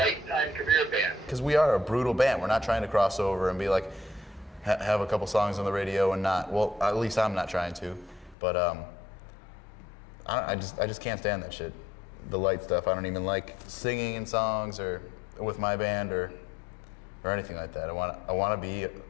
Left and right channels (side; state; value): right; drops out; at 8.3 s